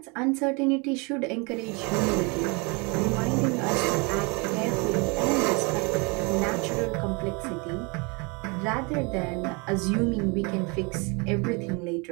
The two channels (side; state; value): left; quieter; 30.0 dB